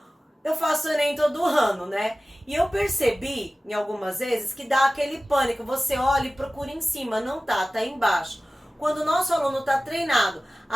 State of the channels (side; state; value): both; normal; correlation 0.96